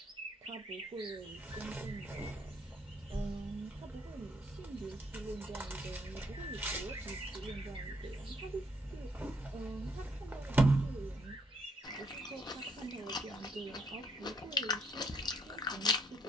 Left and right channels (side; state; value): both; normal; correlation 0.71